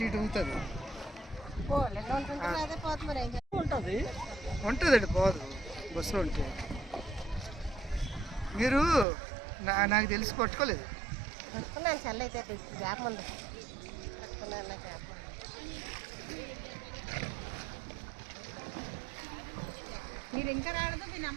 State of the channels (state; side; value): drops out; left; at 9.1 s